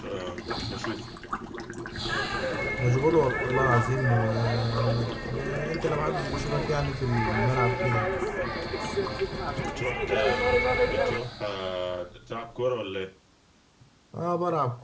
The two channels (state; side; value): identical; both; correlation 1.00